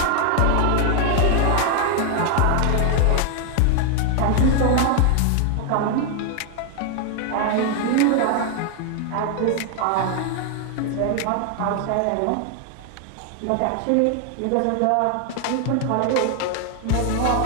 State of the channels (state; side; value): different; both; correlation 0.00